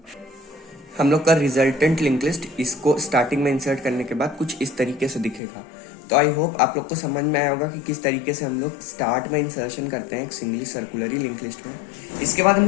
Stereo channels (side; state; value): right; drops out; at 5.4 s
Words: हम लोग का रिजल्टेंट लिंक लिस्ट इसको स्टार्टिंग में इंसर्ट करने के बाद कुछ इस तरीके से दिखेगा। तो आई होप आप लोग को समझ में आया होगा कि किस तरीके से हम लोग स्टार्ट में इंसर्शन करते हैं एक सिंगली सर्कुलरी लिंक लिस्ट में। इसके बाद हम